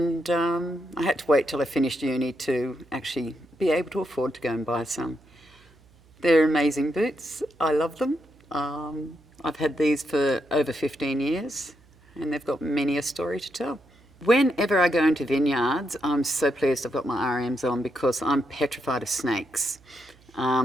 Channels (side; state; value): right; noise; hum, 28 dB below the sound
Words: I had to wait till I finished uni to actually be able to afford to go and buy some. They're amazing boots. I love them. I've had these for over 15 years and they've got many a story to tell. Whenever I go into vineyards, I'm so pleased I've got my RMs on because I'm petrified of snakes.